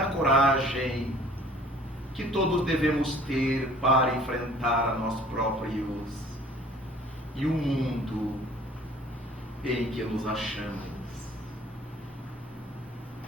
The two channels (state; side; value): normal; both; correlation 0.52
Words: coragem que todos devemos ter para enfrentar a nós próprios e o mundo em que nos achamos.